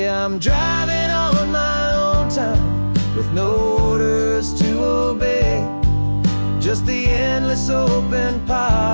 I'm driving on my own time with no orders to obey, just the endless open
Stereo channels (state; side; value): inverted; both; correlation -1.00